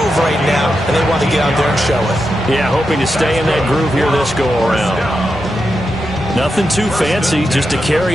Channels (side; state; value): both; normal; correlation 0.87